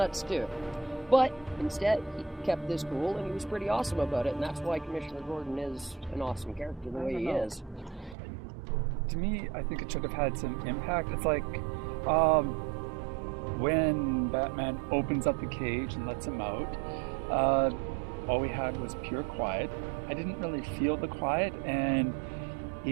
too. But instead, he kept this cool, and he was pretty awesome about it, and that's why Commissioner Gordon is an awesome character the way he is. To me, I think it should have had some impact. It's like when Batman opens up the cage and lets him out, all we had was pure quiet. I didn't really feel the quiet, and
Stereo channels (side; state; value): left; drops out; at 8.2 s